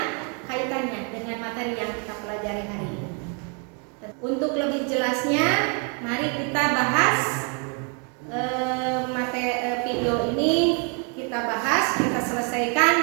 kaitannya dengan materi yang kita pelajari hari ini? Untuk lebih jelasnya, mari kita bahas video ini. Kita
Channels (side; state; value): left; quieter; 37.6 dB